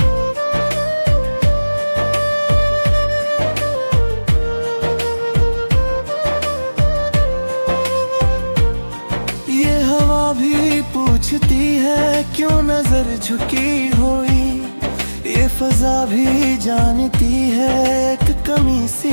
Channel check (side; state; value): both; inverted; correlation -1.00